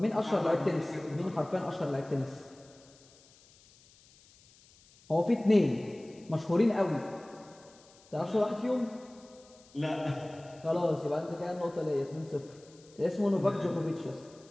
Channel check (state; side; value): noise; left; hiss, 27 dB below the sound